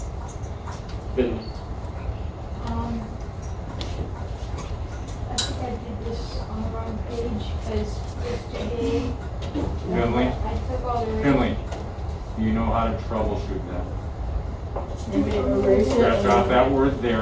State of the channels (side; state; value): both; identical; correlation 1.00